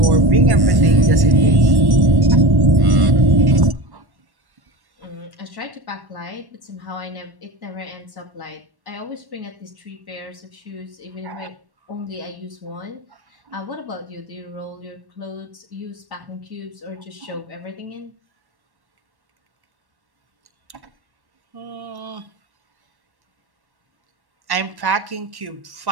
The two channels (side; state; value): left; late; 1.1 ms